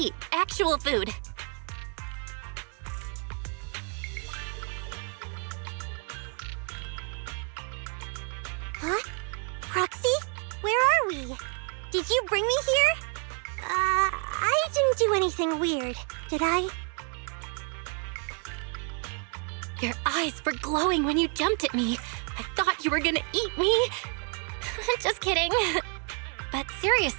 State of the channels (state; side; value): quieter; left; 39.2 dB